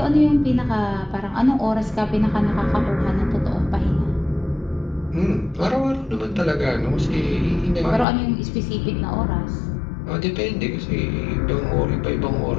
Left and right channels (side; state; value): right; drops out; at 8.1 s